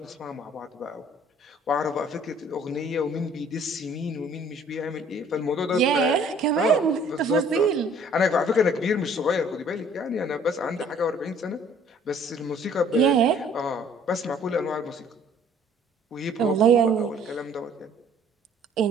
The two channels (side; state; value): both; normal; correlation 0.56